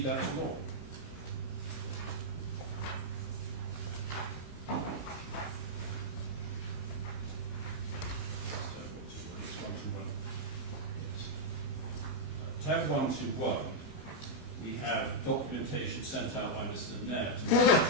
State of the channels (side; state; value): right; late; 16 ms